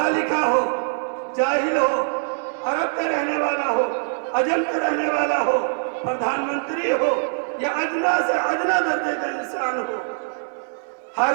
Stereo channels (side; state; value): left; silent; digital silence